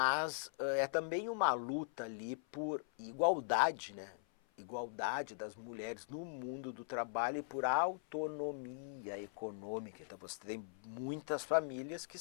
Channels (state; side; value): silent; right; 51 dB below the other